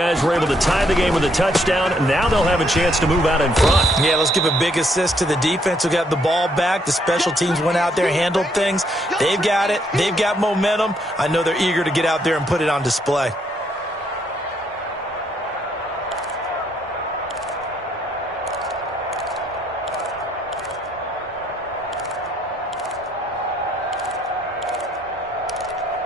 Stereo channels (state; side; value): normal; both; correlation 0.71